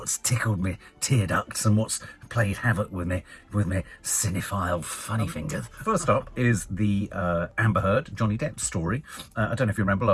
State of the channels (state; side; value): identical; both; correlation 1.00